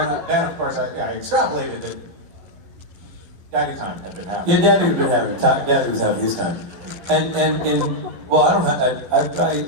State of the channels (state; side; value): late; left; 11 ms